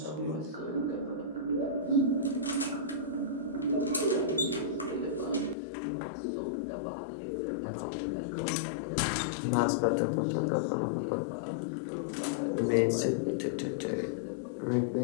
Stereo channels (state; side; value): drops out; right; at 5.6 s